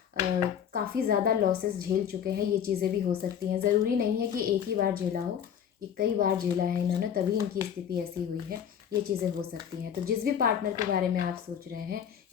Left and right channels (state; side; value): quieter; right; 8.6 dB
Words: काफ़ी ज़्यादा लॉसेस झेल चुके हैं, ये चीज़ें भी हो सकती हैं। ज़रूरी नहीं है कि एक ही बार झेला हो, ये कई बार झेला है इन्होंने, तभी इनकी स्थिति ऐसी हुई है, ये चीज़ें हो सकती हैं। तो जिस भी पार्टनर के बारे में आप सोच रहे हैं,